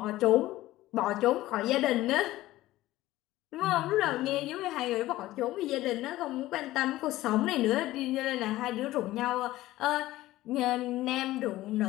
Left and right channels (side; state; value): right; quieter; 16.4 dB